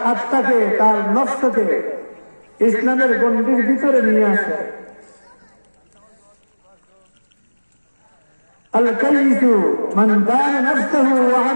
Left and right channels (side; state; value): both; inverted; correlation -1.00